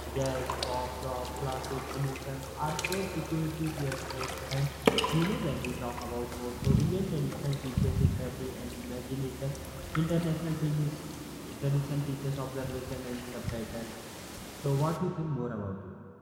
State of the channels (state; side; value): identical; both; correlation 1.00